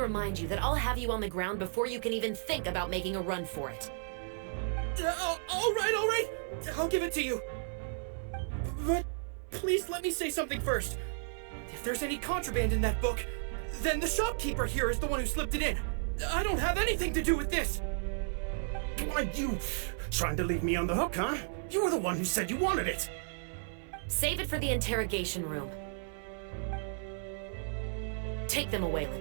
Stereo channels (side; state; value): left; silent; 55 dB below the other